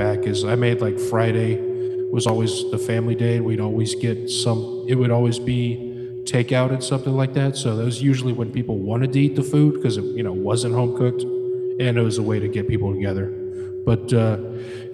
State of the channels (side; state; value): both; identical; correlation 1.00